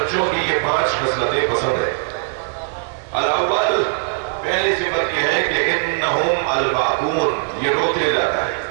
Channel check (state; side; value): silent; left; digital silence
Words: کی یہ 5 خصلتیں پسند ہیں۔ الاول، پہلی صفت یہ ہے کہ انہم الباکون، یہ روتے جاتا ہے۔